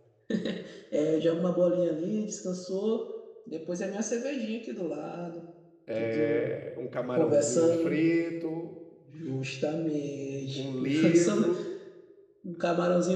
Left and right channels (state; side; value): identical; both; correlation 1.00